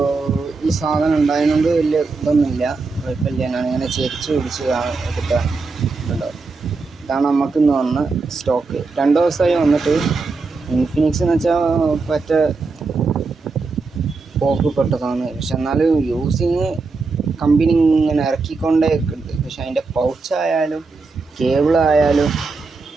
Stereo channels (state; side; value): quieter; left; 4.1 dB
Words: ഈ സാധനം ഉണ്ടായതുകൊണ്ട് വലിയ ഇതൊന്നുമില്ല, കുഴപ്പമില്ല. ഞാനിങ്ങനെ ചെരിച്ച് പിടിച്ച് എടുക്കാൻ കണ്ടോ. ഇതാണ് നമുക്കിന്ന് വന്ന സ്റ്റോക്ക്. 2 ദിവസമായി വന്നിട്ട്. ഇൻഫിനിക്സ് എന്ന് വെച്ചാൽ പറ്റ പോക്ക് പെട്ടതാണ്. പക്ഷെ എന്നാലും യൂസിങ് കമ്പനി ഇങ്ങനെ ഇറക്കിക്കൊണ്ടേ ഉണ്ട്. പക്ഷെ അതിൻ്റെ പൗച്ചായാലും കേബിളായാലും